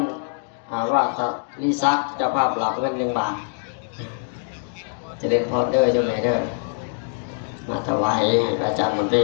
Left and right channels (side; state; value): right; silent; digital silence